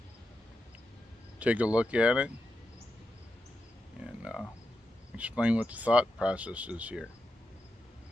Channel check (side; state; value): both; normal; correlation 0.87